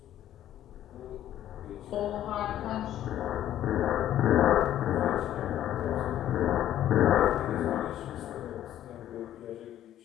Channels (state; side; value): quieter; right; 12.0 dB